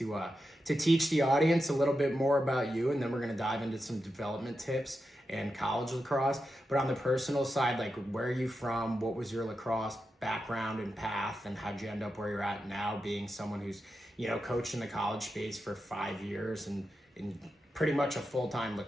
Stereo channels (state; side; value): normal; both; correlation 0.89